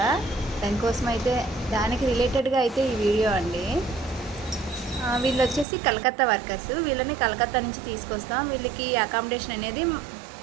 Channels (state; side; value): drops out; left; at 5.7 s